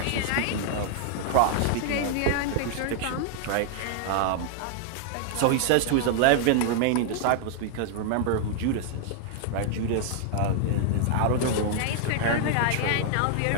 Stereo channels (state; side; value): different; both; correlation 0.00